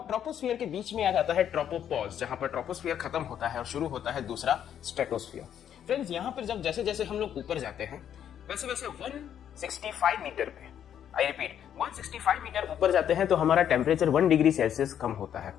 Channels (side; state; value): right; quieter; 9.6 dB